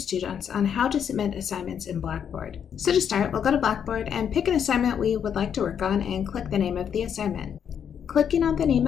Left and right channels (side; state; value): right; quieter; 8.1 dB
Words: on how to submit assignments in Blackboard. So to start, we'll go to Blackboard and pick an assignment we would like to work on and click the name of the assignment. Clicking on the name